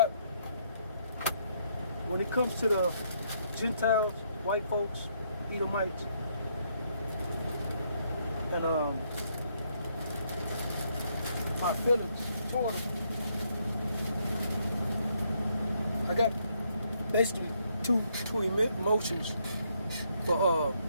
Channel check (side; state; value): both; inverted; correlation -0.73